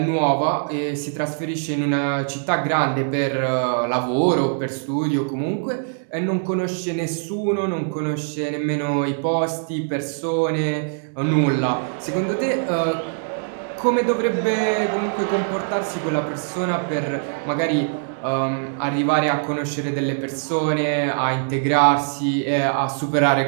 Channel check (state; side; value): silent; left; digital silence